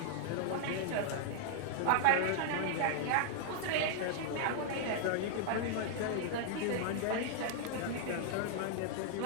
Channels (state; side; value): different; both; correlation -0.01